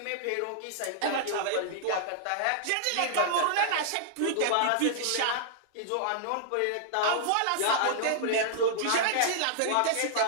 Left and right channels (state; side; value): different; both; correlation -0.01